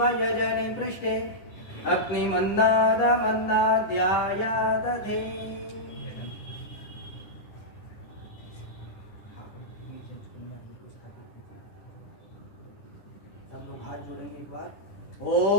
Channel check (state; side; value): late; right; 9.9 ms